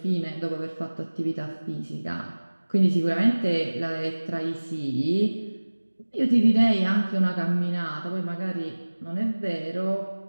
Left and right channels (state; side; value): inverted; both; correlation -1.00